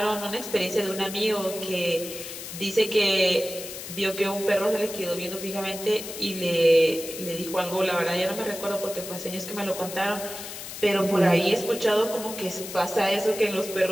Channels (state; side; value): noise; left; hiss, 10 dB below the sound